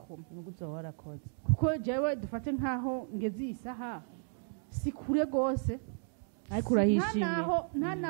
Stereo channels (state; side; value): silent; left; 55 dB below the other